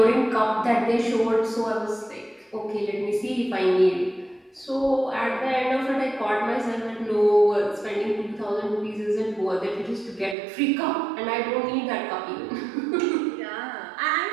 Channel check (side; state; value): left; drops out; at 10.4 s